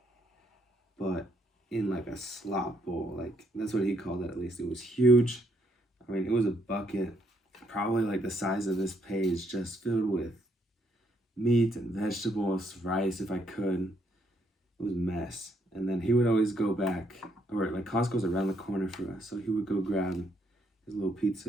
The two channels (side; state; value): both; normal; correlation 0.72